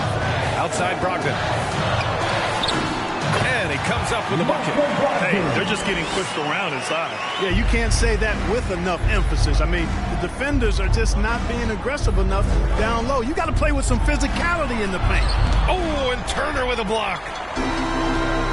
Outside Brogdon. And he comes up with a bucket. Hey, they're just getting pushed around inside. Yeah, you can't say that with enough emphasis. I mean, the defenders are just not being aggressive enough down low. You got to play with some physicality in the paint. Oh, and Turner with a block.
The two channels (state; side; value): identical; both; correlation 1.00